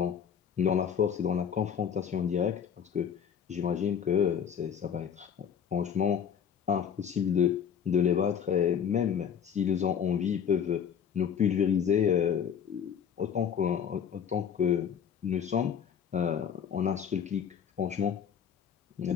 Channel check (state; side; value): quieter; right; 8.0 dB